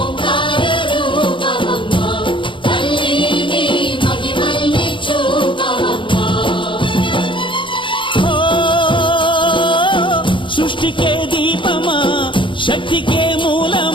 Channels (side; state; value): right; late; 0.24 ms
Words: సృష్టికే దీపమా శక్తికే